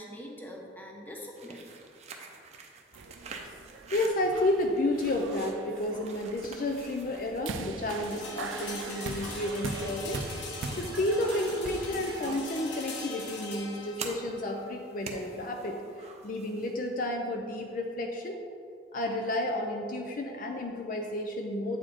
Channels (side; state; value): both; normal; correlation 0.36